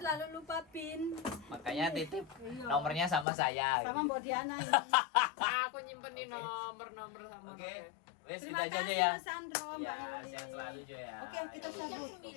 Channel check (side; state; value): right; drops out; at 3.2 s